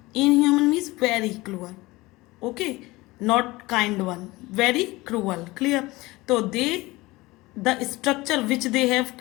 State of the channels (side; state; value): right; quieter; 20.9 dB